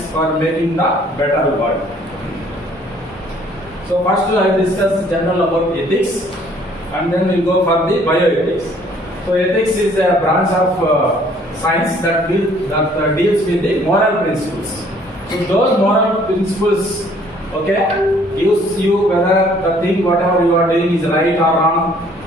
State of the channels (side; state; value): both; normal; correlation 0.59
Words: for making the better world. So first I will discuss general about ethics, and then we will go for the bioethics. So ethics is a branch of science that deals with the moral principles. So those moral principles, okay, gives you whether the thing whatever you are doing is right or wrong,